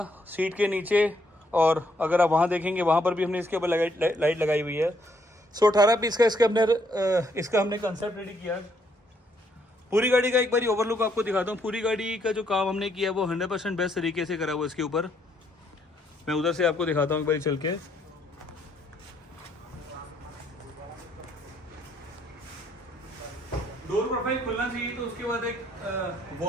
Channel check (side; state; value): both; normal; correlation 0.71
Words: सीट के नीचे, और अगर आप वहाँ देखेंगे वहाँ पर भी हमने इसके ऊपर लाइट लगाई हुई है। सो 18 पीस का इसका हमने कंसेप्ट रेडी किया। पूरी गाड़ी का एक बारी ओवरलुक आपको दिखाता हूँ। पूरी गाड़ी का जो काम हमने किया वो 100% बेस्ट तरीके से करा हुआ इसके ऊपर। मैं उधर से आपको दिखाता हूँ एक बारी चल के। डोर प्रोफाइल खुलना चाहिए तो उसके बाद एक